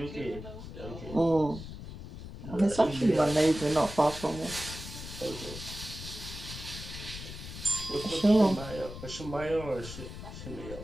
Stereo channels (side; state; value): left; noise; rumble, 11 dB below the sound